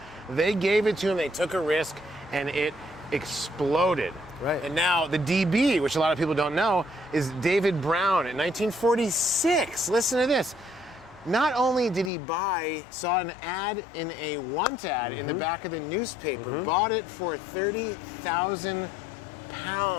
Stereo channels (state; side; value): drops out; right; at 12.1 s